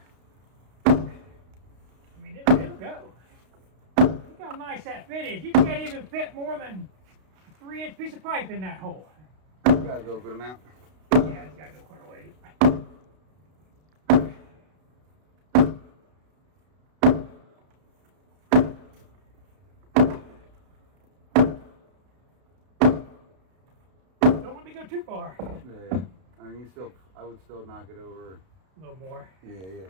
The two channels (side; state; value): left; late; 32 ms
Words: I mean, it'll go. Look how nice that fit is. You can't even fit more than a 3-inch piece of pipe in that hole. You gotta go a good amount. Yeah, it's got to go quite a ways. Don't let me go too far. Yeah. I mean, I would still knock it over. A little more. Yeah, a